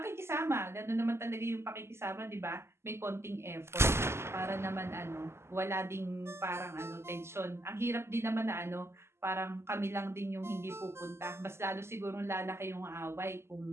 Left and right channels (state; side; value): late; left; 0.12 ms